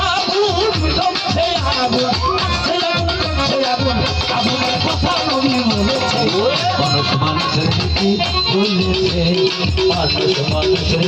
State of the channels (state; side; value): identical; both; correlation 1.00